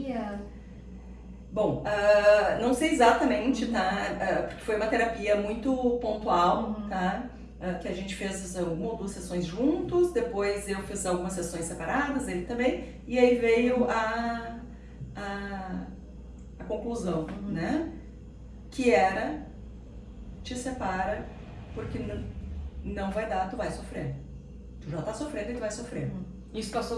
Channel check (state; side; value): identical; both; correlation 1.00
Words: Bom, não sei exatamente, tá? Porque foi uma terapia muito pontual, tá? Que a gente fez uma ou duas sessões juntos, depois eu fiz algumas sessões separadas, ele também, e aí veio a conclusão, né? Que era, te separa, porque não vai dar, tu vai sofrer. Tu já tá sofrendo e tu vai sofrer. Isso passou